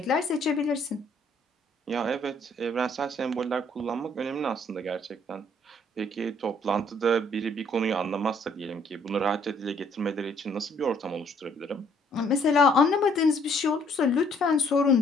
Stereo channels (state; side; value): normal; both; correlation 0.64